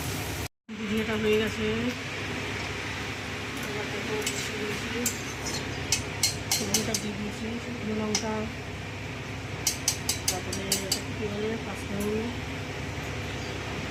ভুজিয়াটা হয়ে গেছে, লঙ্কা দিয়ে দিয়েছি, শুকনো লঙ্কা, তারপরে কী বলে পাঁচফোড়ন।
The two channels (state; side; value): identical; both; correlation 1.00